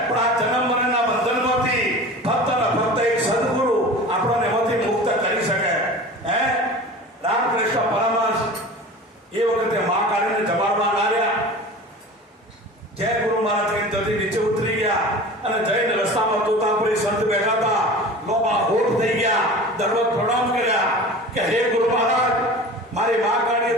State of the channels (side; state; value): both; normal; correlation 0.37